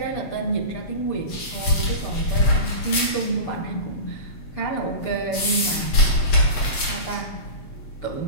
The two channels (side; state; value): right; late; 7.8 ms